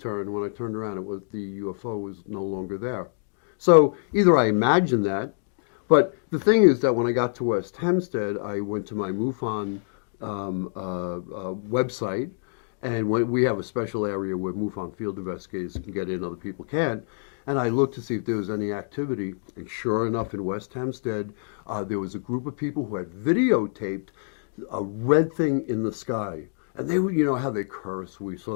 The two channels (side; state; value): right; silent; digital silence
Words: When I turned around, the UFO was no longer there. So either I imagined that, but the thing is that when I got to West Hempstead, I went to my MUFON website, and we have a special area where MUFON field investigators can get in, other people can't. And I looked to see if there was any activity, and sure enough, in West Hempstead, there was a group of people who had videotaped a red thing in the sky. And they would, you know how they curse. We